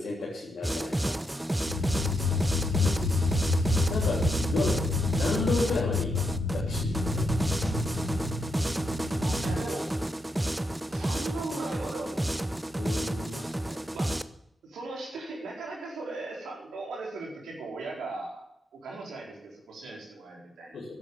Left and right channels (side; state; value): both; normal; correlation 0.82